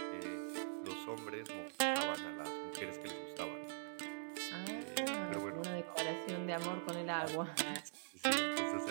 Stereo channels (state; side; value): silent; left; digital silence